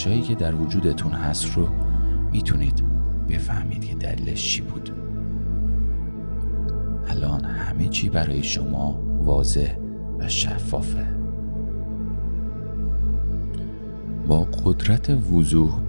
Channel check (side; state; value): both; inverted; correlation -1.00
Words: که در وجودتون هست رو میتونید بفهمید که دلیلش چی بود. الان همه چی برای شما واضح و شفافه. با قدرت وضوح